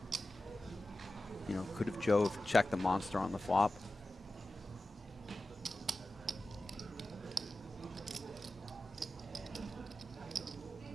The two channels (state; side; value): normal; both; correlation 0.94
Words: You know, could have Joe have checked the monster on the flop?